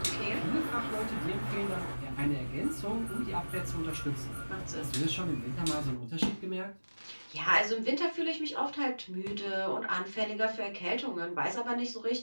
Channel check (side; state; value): both; inverted; correlation -1.00